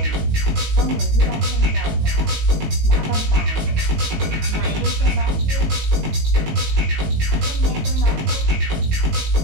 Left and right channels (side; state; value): left; late; 19 ms